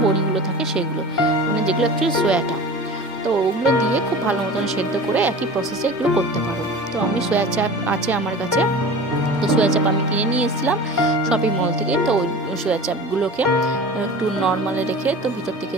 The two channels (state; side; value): normal; both; correlation 0.36